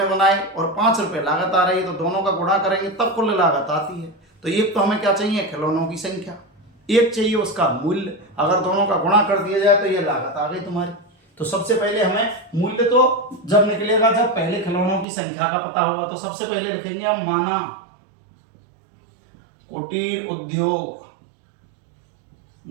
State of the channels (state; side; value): drops out; left; at 15.1 s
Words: बनाए और 5 रुपए लागत आ रही है तो दोनों का गुणा करेंगे तब कुल लागत आती है। तो एक तो हमें क्या चाहिए, खिलौनों की संख्या, एक चाहिए उसका मूल्य, अगर दोनों का गुणा कर दिया जाए तो ये लागत आ गई तुम्हारी। तो सबसे पहले हमें मूल्य तो जब निकलेगा जब पहले खिलौनों की संख्या का पता होगा, तो सबसे पहले लिखेंगे हम माना कुटीर उद्योग